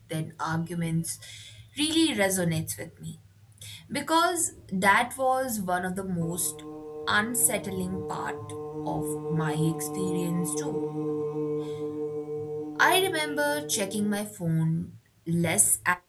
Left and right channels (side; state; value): both; identical; correlation 1.00